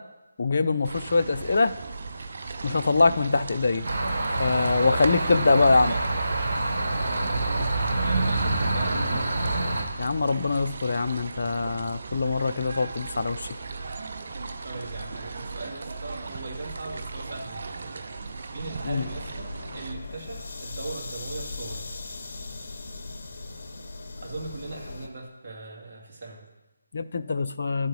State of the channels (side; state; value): both; inverted; correlation -0.88